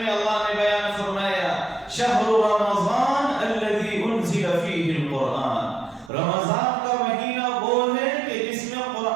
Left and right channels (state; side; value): drops out; left; at 6.1 s